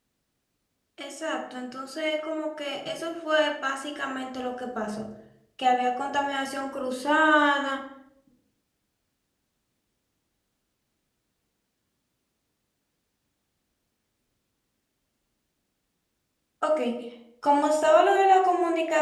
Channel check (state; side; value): identical; both; correlation 1.00